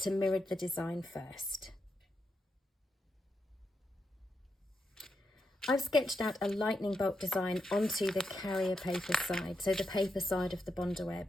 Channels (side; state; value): both; normal; correlation 0.84